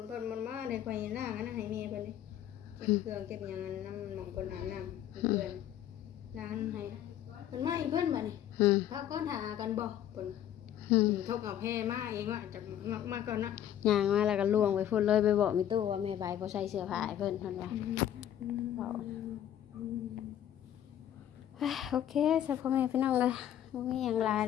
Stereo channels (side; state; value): right; quieter; 10.9 dB